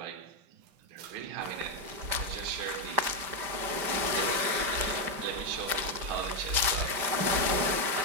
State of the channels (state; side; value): late; left; 5.2 ms